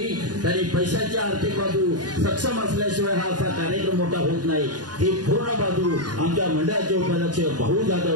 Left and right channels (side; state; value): left; late; 0.69 ms